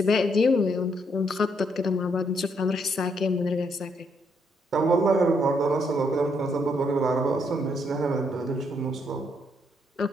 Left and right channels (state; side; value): normal; both; correlation 0.74